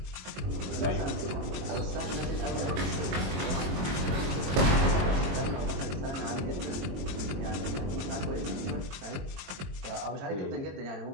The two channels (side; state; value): left; late; 22 ms